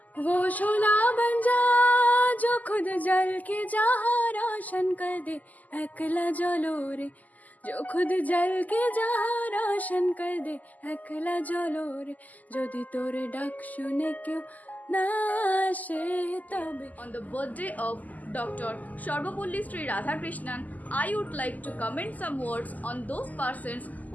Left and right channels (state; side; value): late; right; 0.079 ms